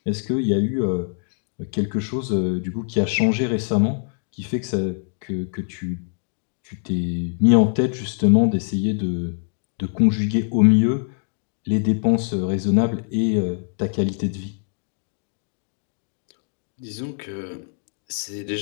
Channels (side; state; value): right; silent; 63 dB below the other